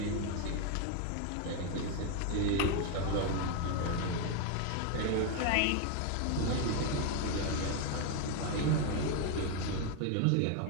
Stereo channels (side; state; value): both; different; correlation 0.01